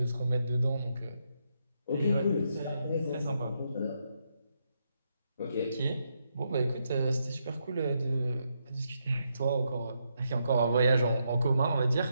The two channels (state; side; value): inverted; both; correlation -0.80